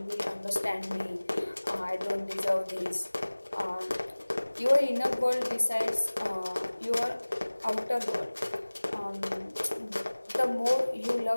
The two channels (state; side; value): inverted; both; correlation -1.00